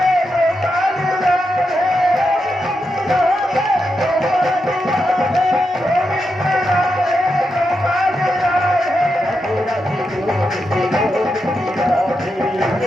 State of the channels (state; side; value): normal; both; correlation 0.86